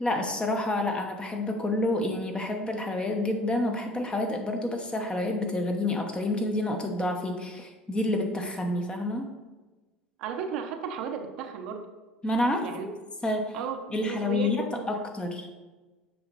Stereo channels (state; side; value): normal; both; correlation 0.51